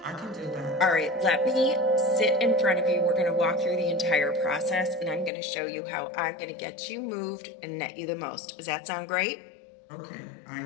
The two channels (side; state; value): right; drops out; at 5.3 s